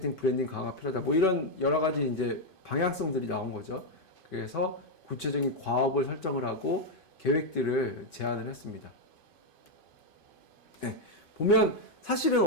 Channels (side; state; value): right; late; 2.5 ms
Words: 브랜딩 강화가 필요하다, 뭐 이런 여러 가지 이제 방향성들이 나온 거죠. 그래서 구체적인 과업을 설정을 하고 계획들을 제안을 했습니다. 네, 보면 사실은